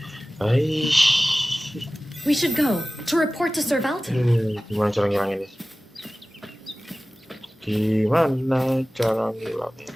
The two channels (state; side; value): normal; both; correlation 0.97